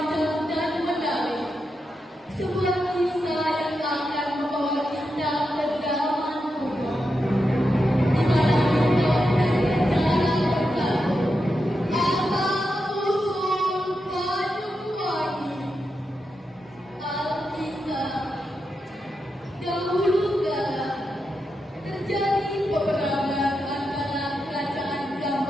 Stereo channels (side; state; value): both; normal; correlation 0.87